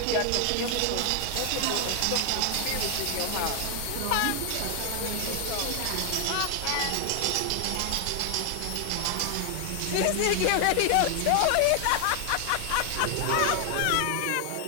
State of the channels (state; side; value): different; both; correlation 0.00